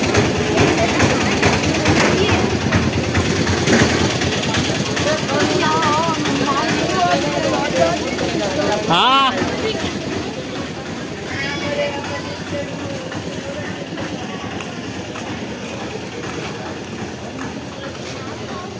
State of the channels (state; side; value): identical; both; correlation 1.00